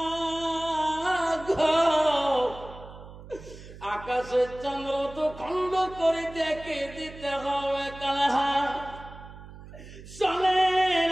আকাশের চন্দ্র তো খণ্ড করে দেখে দিতে হবে। চলেন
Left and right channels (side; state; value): right; noise; hum, 16 dB below the sound